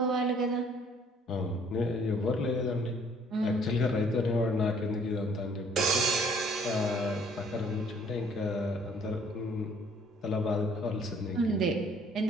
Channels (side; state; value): both; normal; correlation 0.59